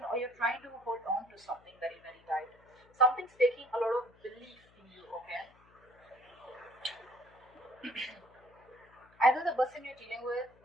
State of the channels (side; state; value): left; noise; hum, 29 dB below the sound